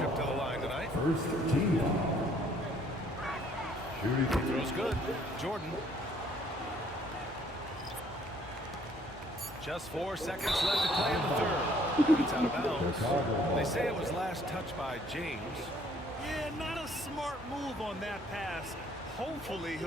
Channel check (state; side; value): normal; both; correlation 0.62